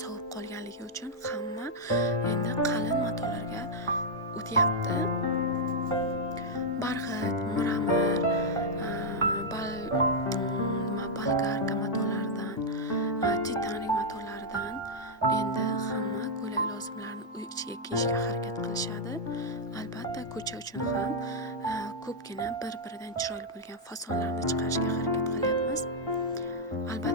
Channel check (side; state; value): both; normal; correlation -0.04